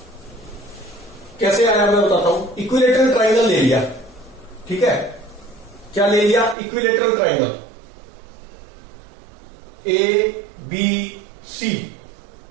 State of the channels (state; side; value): drops out; left; at 6.6 s